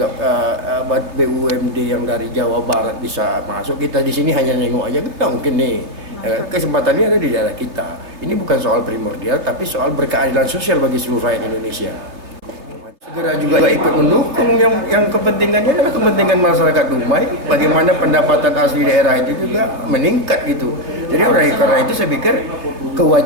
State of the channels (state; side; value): late; left; 3.2 ms